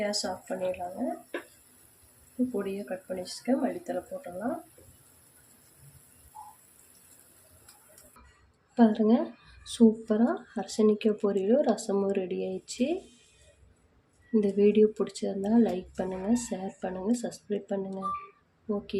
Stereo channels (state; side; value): identical; both; correlation 1.00